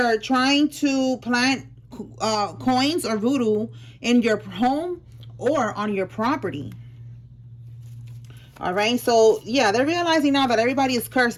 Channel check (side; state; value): both; identical; correlation 1.00